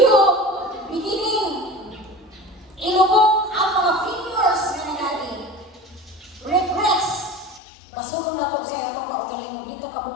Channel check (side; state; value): right; drops out; at 7.6 s